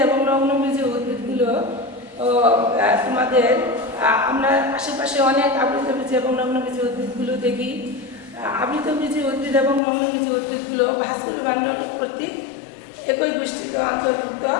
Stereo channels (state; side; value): drops out; right; at 9.8 s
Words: এবং নগ্নবীজি উদ্ভিদগুলো তোমাদের আমরা আশেপাশে অনেক আবৃতবীজি এবং নগ্নবীজি উদ্ভিদগুলো দেখি। আবৃতবীজি উদ্ভিদ এবং নগ্নবীজি উদ্ভিদগুলো ভাস্কুলার বান্ডল কর্তৃক একই গোষ্ঠীতে অন্তর্ভুক্ত।